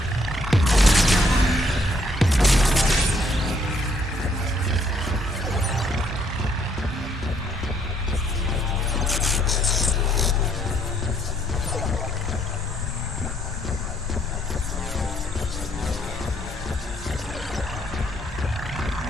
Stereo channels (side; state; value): both; normal; correlation 0.68